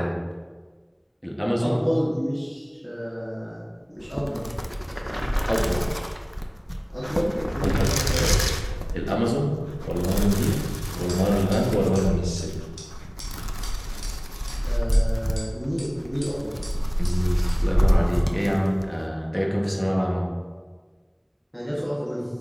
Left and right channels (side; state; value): both; identical; correlation 1.00